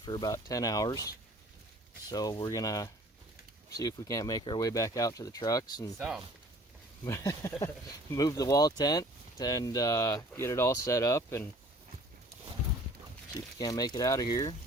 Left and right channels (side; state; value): both; normal; correlation 0.51